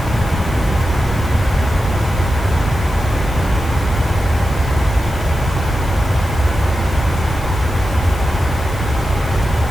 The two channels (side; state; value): left; noise; hiss, 21 dB below the sound